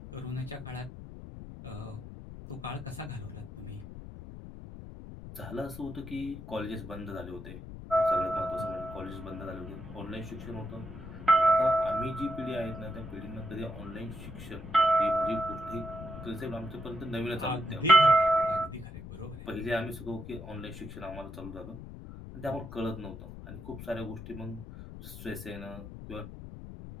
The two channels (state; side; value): noise; left; rumble, 12 dB below the sound